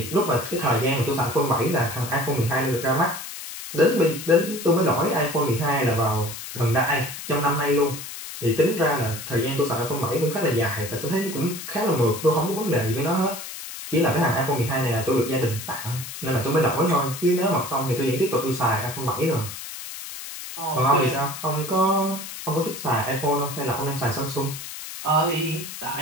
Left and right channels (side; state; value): left; noise; hiss, 10 dB below the sound